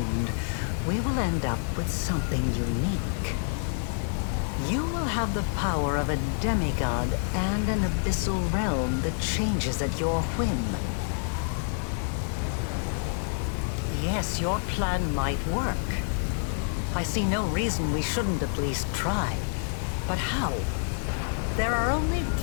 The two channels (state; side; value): silent; right; 59 dB below the other